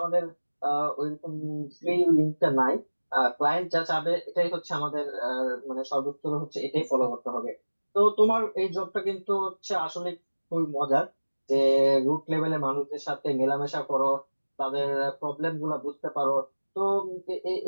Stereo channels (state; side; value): inverted; both; correlation -1.00